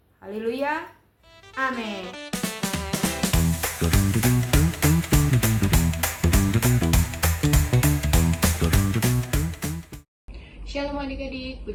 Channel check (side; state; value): both; identical; correlation 1.00